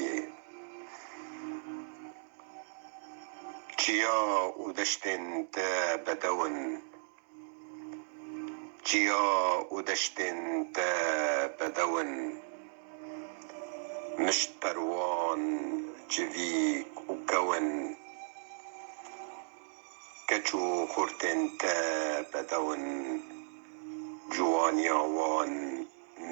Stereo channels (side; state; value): left; silent; digital silence